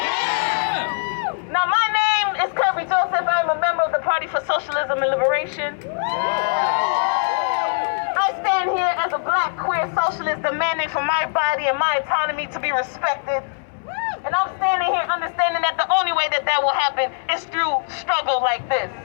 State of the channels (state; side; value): silent; right; 65 dB below the other